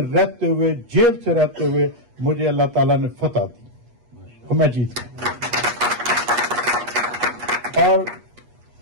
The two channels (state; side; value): late; left; 8.4 ms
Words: रहते हुए, जेल से रहते हुए मुझे अल्लाह ताला ने फतह दी और मैं जीत गया। और